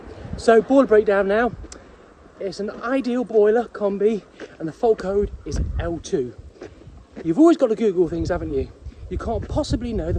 So boiler breakdown now. It's an ideal boiler combi and the fault code is L2. You've always got to Google things, haven't you? You can't possibly know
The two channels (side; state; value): both; identical; correlation 1.00